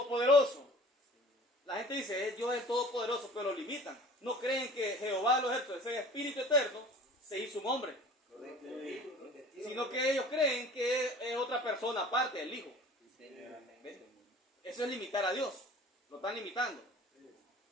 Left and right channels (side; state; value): both; normal; correlation 0.45